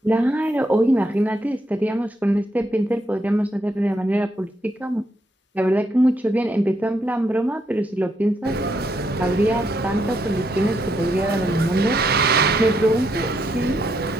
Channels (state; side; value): normal; both; correlation 0.78